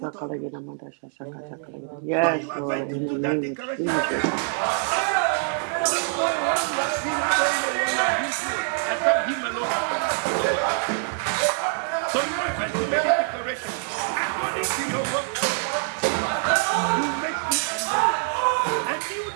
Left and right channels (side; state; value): left; silent; 62 dB below the other